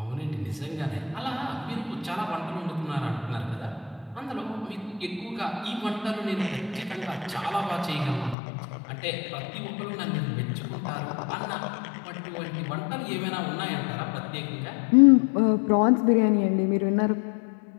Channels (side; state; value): right; drops out; at 8.3 s